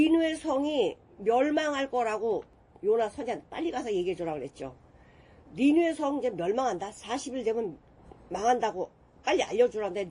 성이 멸망할 거라고 요나 선지자한테 빨리 가서 얘기해 주라고 그랬죠. 니느웨 성 이제 멸망한다. 40일 되면 망한다고 빨리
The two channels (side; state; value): both; identical; correlation 1.00